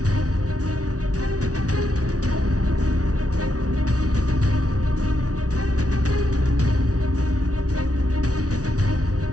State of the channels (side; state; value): left; late; 0.67 ms